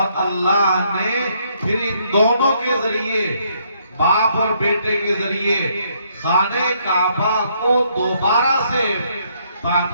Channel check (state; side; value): inverted; both; correlation -0.70